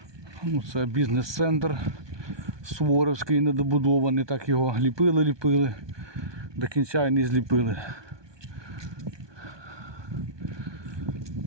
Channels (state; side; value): late; left; 1.2 ms